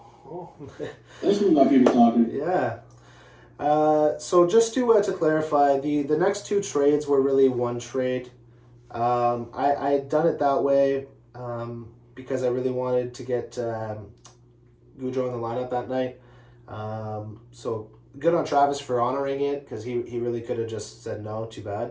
This one got people talking. Yeah. So just to clarify, the next 2 trades were really one trade. I had done it that way because I really wanted to get Goudreau in the lineup that night. So good on Travis for honoring it, because he really could have just said no, too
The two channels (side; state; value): both; identical; correlation 1.00